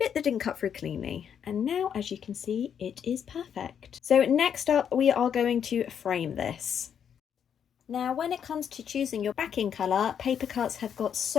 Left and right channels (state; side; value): quieter; right; 8.2 dB